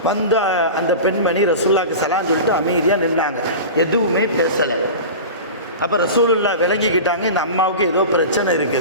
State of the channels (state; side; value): inverted; both; correlation -0.31